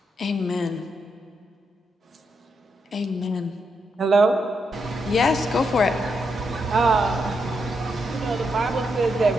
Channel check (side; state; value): both; normal; correlation 0.82